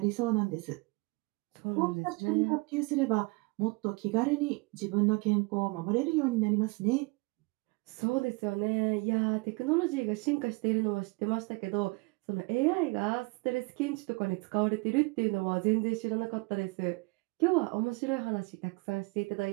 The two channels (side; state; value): left; quieter; 27.5 dB